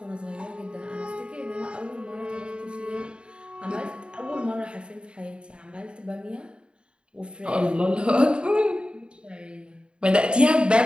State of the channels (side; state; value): left; late; 0.053 ms